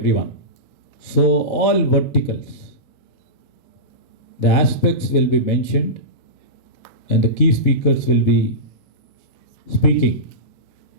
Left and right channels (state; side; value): normal; both; correlation -0.18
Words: So all verticals, the aspects will be mentioned and the key speakers will be speaking